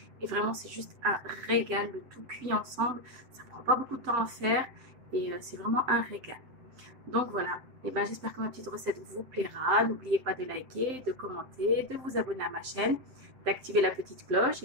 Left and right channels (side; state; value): left; late; 7.7 ms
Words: et vraiment c'est juste un régal, le tout cuit ensemble, ça prend pas beaucoup de temps à faire et c'est vraiment un régal. Donc voilà, et ben, j'espère que ma petite recette vous plaira. N'oubliez pas de liker, de commenter, de vous abonner à ma chaîne, d'activer la petite cloche.